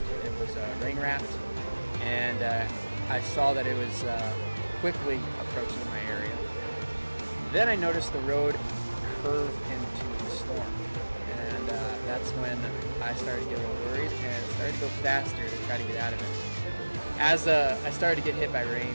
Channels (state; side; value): inverted; both; correlation -1.00